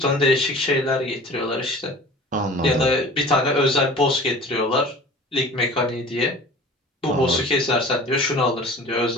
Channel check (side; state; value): both; normal; correlation 0.42